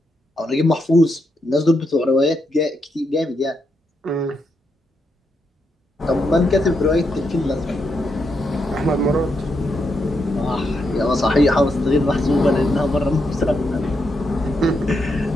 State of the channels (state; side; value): normal; both; correlation 0.81